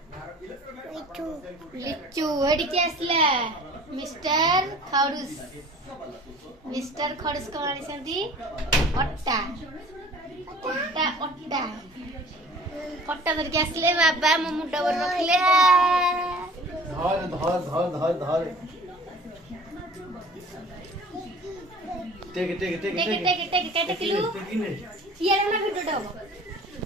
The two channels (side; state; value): both; normal; correlation 0.46